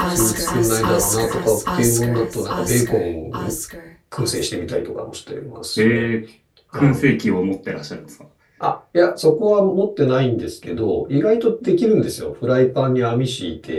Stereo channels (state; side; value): identical; both; correlation 1.00